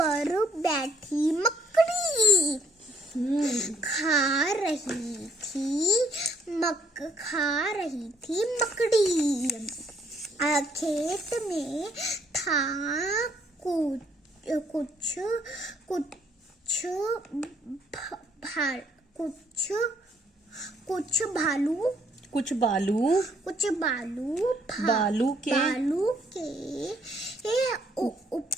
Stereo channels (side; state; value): both; normal; correlation 0.66